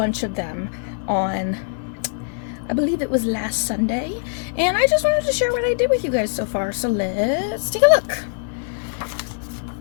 of them on, I believe it was last Sunday, and I just wanted to share what I did with you guys so far. So let's take a look.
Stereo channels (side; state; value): right; silent; digital silence